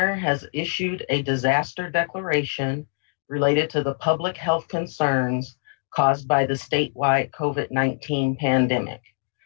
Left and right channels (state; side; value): silent; right; digital silence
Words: has issued a disaster declaration related to the public health concerns caused by the statewide COVID-19 pandemic.